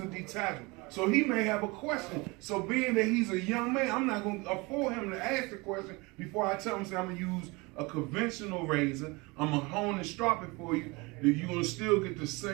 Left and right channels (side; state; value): left; quieter; 25.5 dB